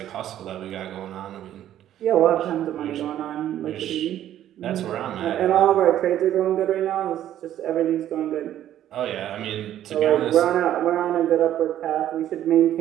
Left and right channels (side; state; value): left; quieter; 11.8 dB